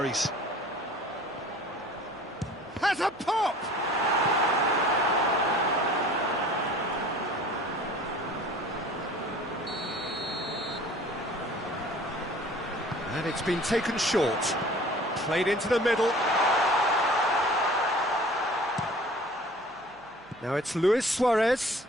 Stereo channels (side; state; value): right; noise; hum, 29 dB below the sound